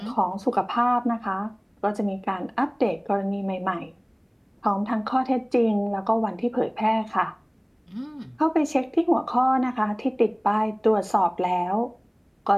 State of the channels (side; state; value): both; identical; correlation 1.00